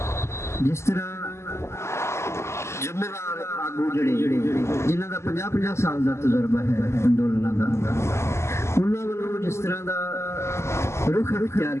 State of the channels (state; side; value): late; right; 0.13 ms